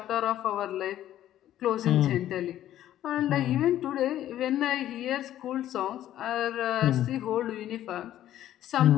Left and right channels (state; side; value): quieter; right; 12.5 dB